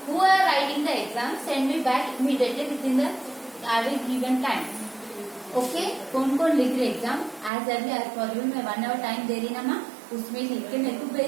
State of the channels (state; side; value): drops out; left; at 7.5 s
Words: Who are writing the exam, send me back immediately within the given time. Okay, कौन कौन लिख रहे exam as early as possible. मैं 1 our time दे रही ना माँ, उसमें लिख के मेरे को